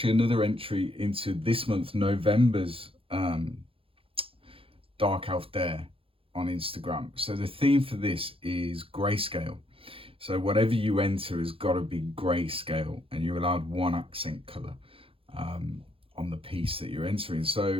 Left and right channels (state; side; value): late; left; 0.27 ms